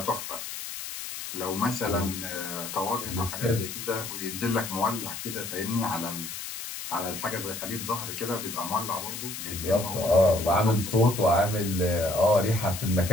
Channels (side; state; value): left; noise; hiss, 8 dB below the sound